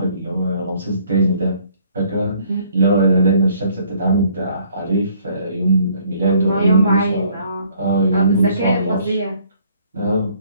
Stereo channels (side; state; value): both; inverted; correlation -0.61